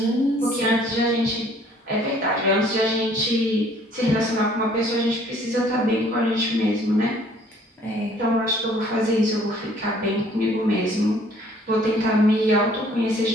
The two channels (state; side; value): normal; both; correlation 0.58